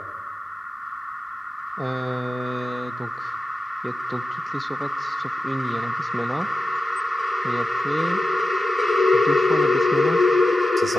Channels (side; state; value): both; normal; correlation 0.92